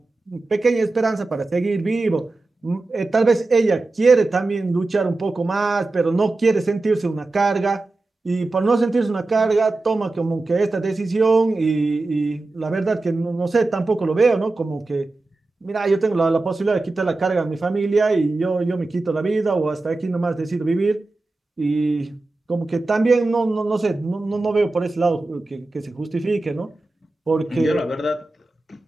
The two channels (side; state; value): left; quieter; 3.2 dB